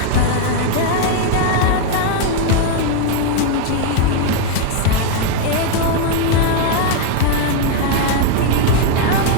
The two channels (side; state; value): both; different; correlation 0.00